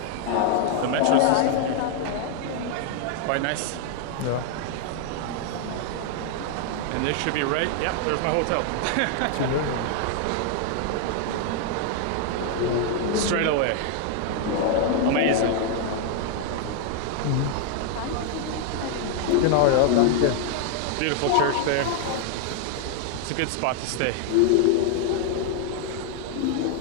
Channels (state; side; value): different; both; correlation 0.00